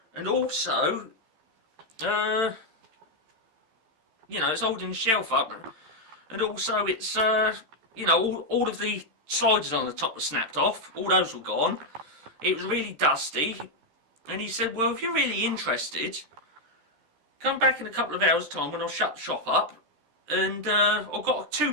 And also, you know, it's holding the shelf up. And also it's, you know, all of the sliders on the top were snapped off. All those were gone. It was really dusty. And he said, well, if you're really interested, come back in a couple of hours' time when I'll shut the shop up. And I've got 2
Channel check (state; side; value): late; left; 13 ms